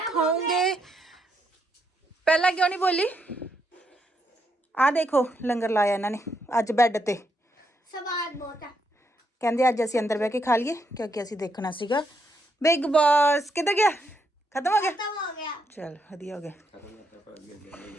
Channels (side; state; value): both; normal; correlation 0.77